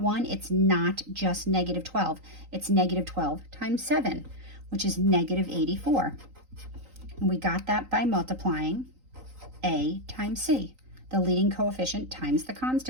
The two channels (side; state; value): left; late; 3.9 ms